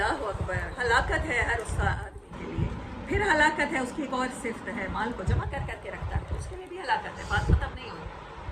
اکبر. ہلاکت ہے ہر اس آدمی کے لیے. پھر ہلاکت ہے اس کی ایک اور صفت ہے, مال کو جمع کر کے رکھتا ہے, اس کے لیے بھی ہلاکت ہے. بات ختم نہیں ہوئی.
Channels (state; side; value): identical; both; correlation 1.00